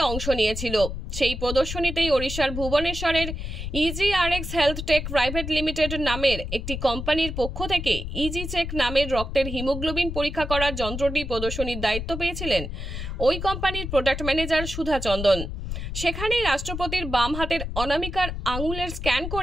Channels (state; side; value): noise; left; rumble, 6 dB below the sound